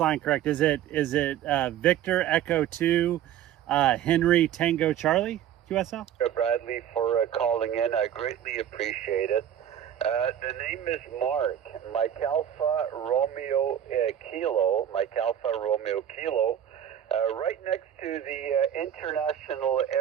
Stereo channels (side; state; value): left; quieter; 10.4 dB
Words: correct. Is it Victor Echo 2, Henry Tango Charlie? QSL? Bradley for calling in. I greatly appreciate it. The name is Mark. Mike Alpha Romeo Kilo. Mike Alpha Romeo Kilo. Right next to the international